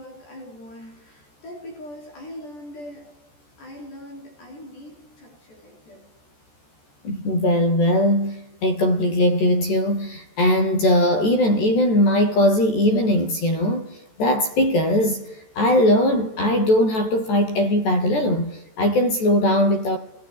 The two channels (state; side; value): late; right; 14 ms